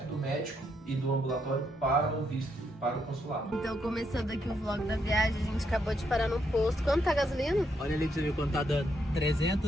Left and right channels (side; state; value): both; normal; correlation 0.77